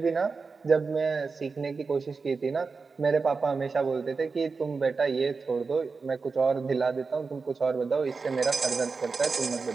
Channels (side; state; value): left; quieter; 4.6 dB